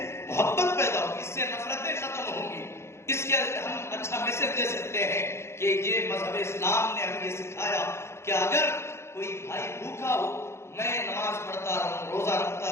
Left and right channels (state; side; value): late; right; 0.13 ms